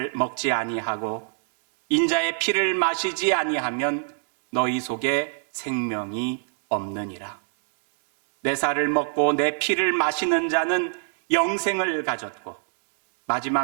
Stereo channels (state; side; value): silent; left; digital silence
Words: 먹지 아니하고 인자의 피를 마시지 아니하면 너희 속에 생명이 없느니라. 내 살을 먹고 내 피를 마시는 자는 영생을 가졌고